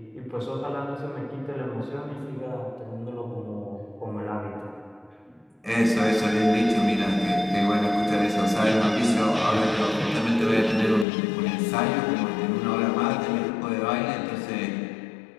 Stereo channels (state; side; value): drops out; right; at 11.1 s